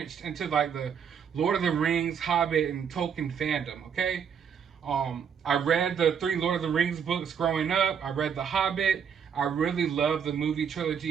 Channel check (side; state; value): left; quieter; 7.4 dB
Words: into, like, the Lord of the Rings, Hobbit, and Tolkien fandom, okay? I read the 3 Lord of the Rings books growing up. I read The Hobbit. I really love the movie